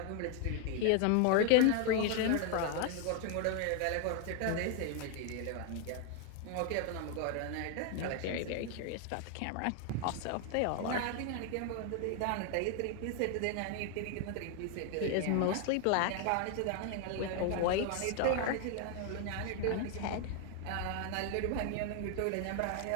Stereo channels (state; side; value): different; both; correlation 0.01